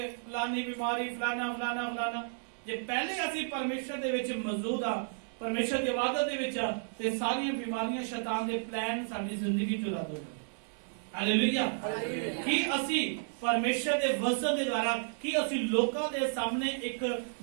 ਫਲਾਨੀ ਬਿਮਾਰੀ, ਫਲਾਨਾ। ਜੇ ਪਹਿਲੇ ਅਸੀਂ ਪਰਮੇਸ਼ਰ ਦੇ ਵਿੱਚ ਮੌਜੂਦ ਆ, ਪਰਮੇਸ਼ਰ ਦੀ ਇਬਾਦਤ ਦੇ ਵਿੱਚ ਆ, ਤੇ ਸਾਰੀਆਂ ਬਿਮਾਰੀਆਂ, ਸ਼ੈਤਾਨ ਦੇ ਪਲਾਨ ਸਾਡੀ ਜ਼ਿੰਦਗੀ ਚੋਂ ਰੱਦ ਹੋ ਜਾਣਗੇ। ਹਾਲੇਲੂਇਆ। ਕੀ ਅਸੀਂ ਪਰਮੇਸ਼ਰ ਦੇ ਵਚਨ ਦੇ ਦੁਆਰਾ ਕੀ ਅਸੀਂ ਲੋਕਾਂ ਦੇ ਸਾਹਮਣੇ ਇੱਕ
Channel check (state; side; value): silent; left; digital silence